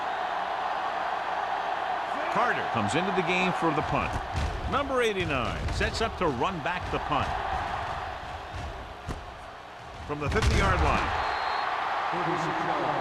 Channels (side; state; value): both; identical; correlation 1.00